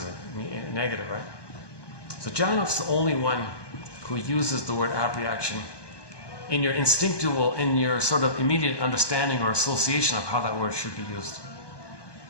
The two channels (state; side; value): late; right; 1.2 ms